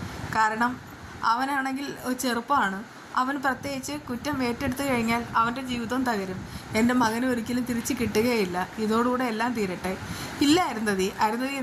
കാരണം അവനാണെങ്കിൽ ചെറുപ്പമാണ്. അവൻ പ്രത്യേകിച്ച് കുറ്റം ഏറ്റെടുത്തു കഴിഞ്ഞാൽ അവൻ്റെ ജീവിതം തകരും. എൻ്റെ മകന് ഒരിക്കലും തിരിച്ച് കിട്ടുകയില്ല. ഇതോടുകൂടെ എല്ലാം തീരട്ടെ. ഇല്ല അരുന്ധതി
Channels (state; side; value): identical; both; correlation 1.00